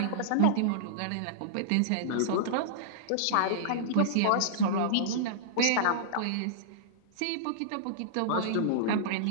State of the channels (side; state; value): both; different; correlation -0.02